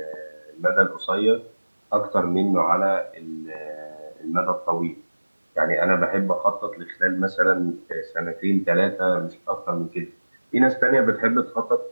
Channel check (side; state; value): both; inverted; correlation -1.00